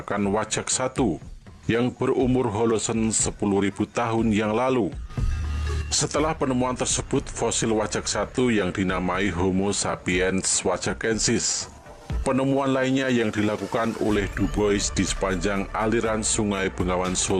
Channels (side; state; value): both; identical; correlation 1.00